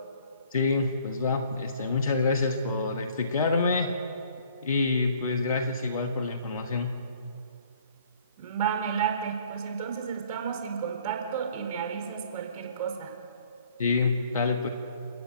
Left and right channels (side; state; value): both; inverted; correlation -0.57